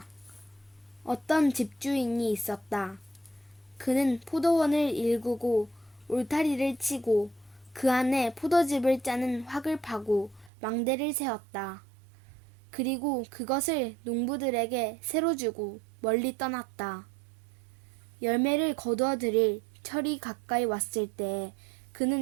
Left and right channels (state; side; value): drops out; left; at 10.5 s